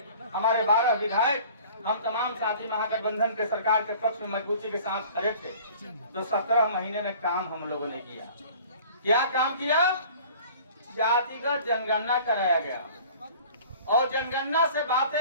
हमारे 12 विधायक, हम तमाम साथी महागठबंधन के सरकार के पक्ष में मजबूती के साथ खड़े थे। तो 17 महीने में काम हम लोगों ने किया। क्या काम किया? जातिगत जनगणना कराया गया और जनगणना से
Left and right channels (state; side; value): inverted; both; correlation -0.48